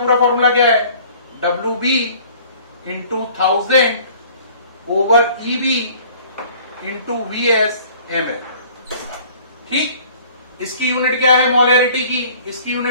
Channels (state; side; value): inverted; both; correlation -0.52